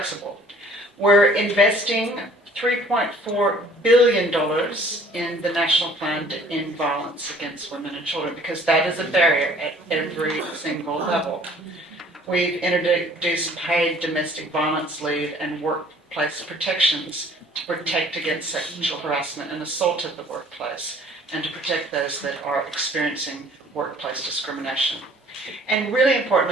We're investing $3.4 billion in the National Plan to End Violence Against Women and Children, because that is a barrier at every single level. We've introduced paid domestic violence leave and workplace protections to protect against sexual harassment and assault at the workplace, and to protect those that are experiencing workplace discrimination. And really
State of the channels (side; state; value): both; normal; correlation 0.54